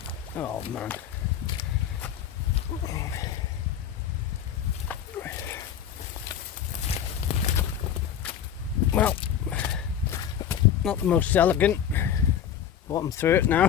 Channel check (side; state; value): right; quieter; 9.4 dB